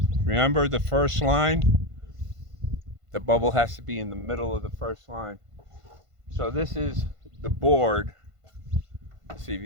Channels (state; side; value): late; left; 1.5 ms